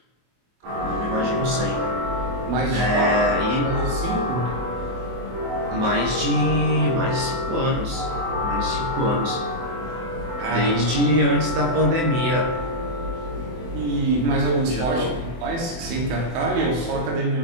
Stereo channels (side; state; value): left; late; 24 ms